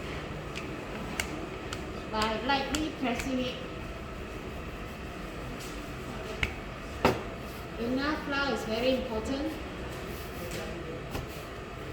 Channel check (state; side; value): identical; both; correlation 1.00